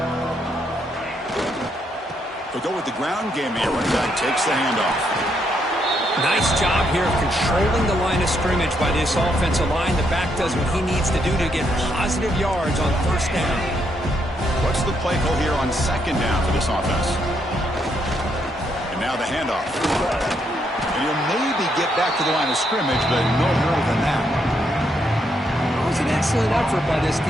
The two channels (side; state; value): both; normal; correlation 0.76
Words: They'll go with the ground game here. Running back takes the handoff. Nice job here of controlling the line of scrimmage by this offensive line. The back does what he needs to do to get positive yards on 1st down. What's the play call here on 2nd down for this offense? And now the handoff. And he'll maybe get back to the line of scrimmage, but no more than that. It was an excellent effort by this